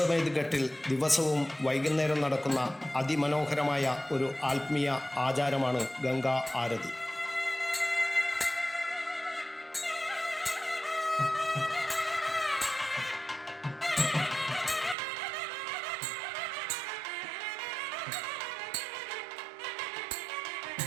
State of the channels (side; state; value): left; drops out; at 15.0 s